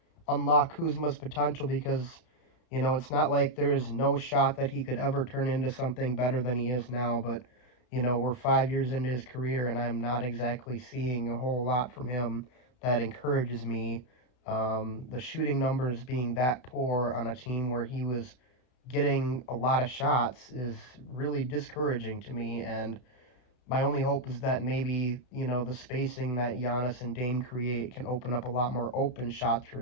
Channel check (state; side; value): late; right; 32 ms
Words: unlock Kuzma's potential because it's not like there is no shot that he could ever turn into something better than he is now. But we're 5 years into his career, and I'm not exactly seeing a whole lot from him that encourages me. The shooting numbers being that poor on a team where he was getting a lot of shots is really discouraging to me. And my only hope is that maybe, the spacing that Giannis and Dame create can open up a lot more open shots for